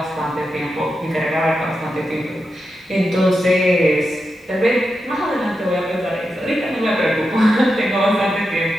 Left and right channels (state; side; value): normal; both; correlation 0.88